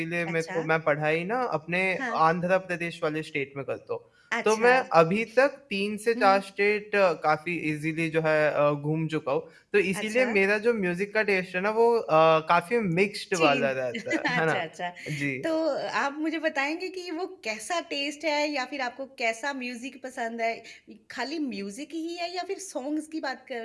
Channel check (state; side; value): identical; both; correlation 1.00